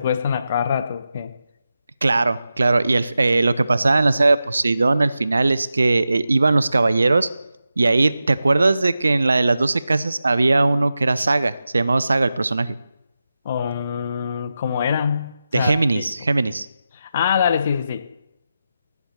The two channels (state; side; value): inverted; both; correlation -0.91